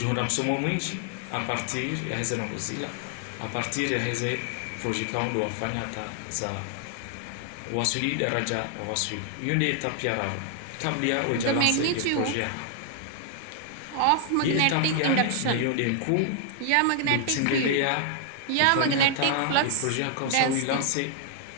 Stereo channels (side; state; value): both; different; correlation 0.00